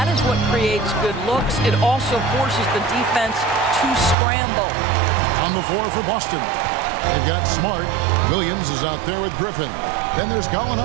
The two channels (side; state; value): left; drops out; at 4.2 s